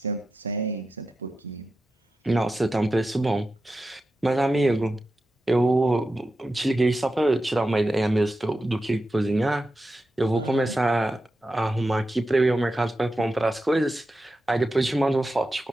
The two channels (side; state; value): both; normal; correlation 0.91